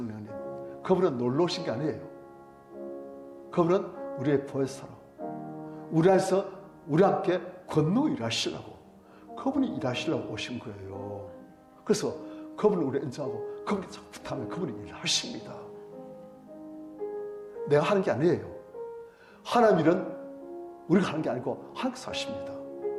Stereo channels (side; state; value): both; identical; correlation 1.00